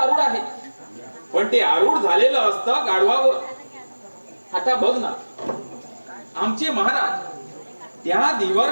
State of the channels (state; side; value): inverted; both; correlation -1.00